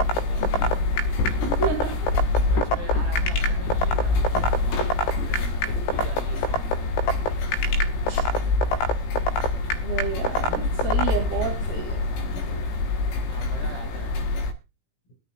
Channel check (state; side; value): late; right; 17 ms